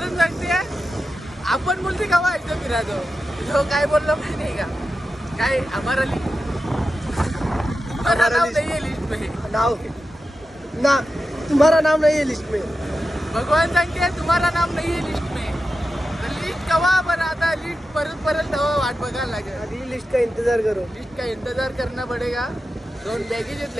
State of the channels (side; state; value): both; normal; correlation 0.91